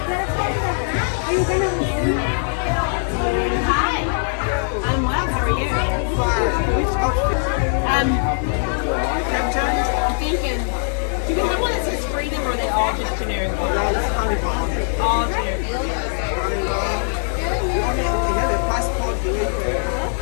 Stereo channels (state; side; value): silent; right; digital silence